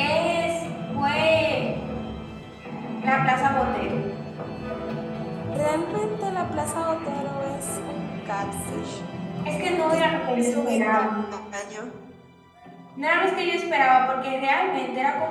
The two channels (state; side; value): identical; both; correlation 1.00